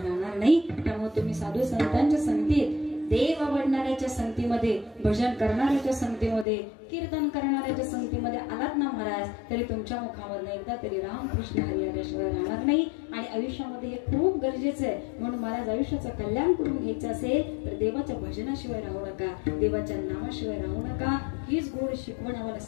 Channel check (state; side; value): drops out; right; at 6.5 s